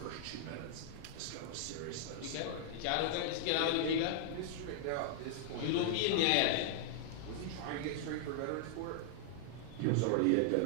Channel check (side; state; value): both; different; correlation -0.01